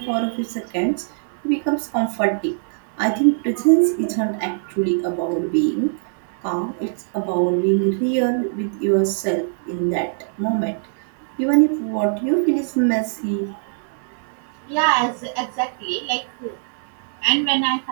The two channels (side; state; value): left; silent; 64 dB below the other